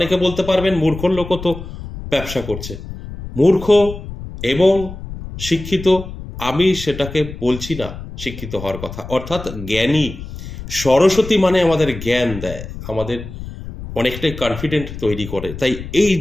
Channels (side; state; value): left; noise; rumble, 11 dB below the sound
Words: বলতে পারবেন মূর্খর লোকও তো ব্যবসা করছে। মূর্খ এবং শিক্ষিত আমি সেটাকে বলছি না, শিক্ষিত হওয়ার কথা। অর্থাৎ জ্ঞানী, সরস্বতী মানে আমাদের জ্ঞান দেয়, আমাদের অনেকটাই কনফিডেন্ট তৈরি করে। তাই এই